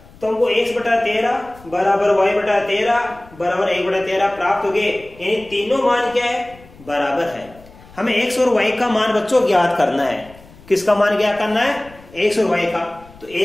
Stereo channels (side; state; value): left; noise; rumble, 23 dB below the sound